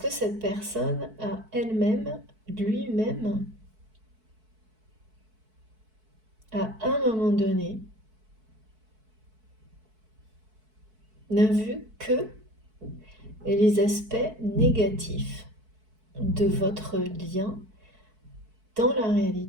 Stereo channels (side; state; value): left; late; 4.6 ms